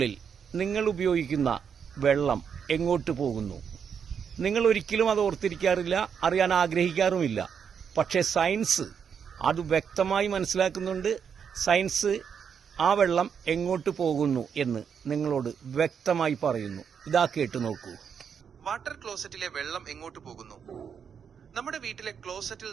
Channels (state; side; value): quieter; left; 7.2 dB